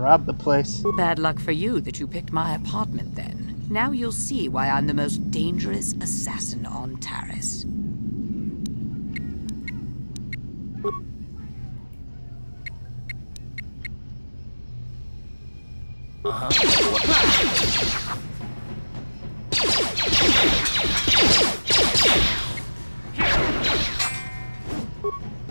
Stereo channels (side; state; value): both; inverted; correlation -1.00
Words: the place. Bad luck for you that you picked my apartment then. Now you'll see why I'm the most dangerous assassin on Taris.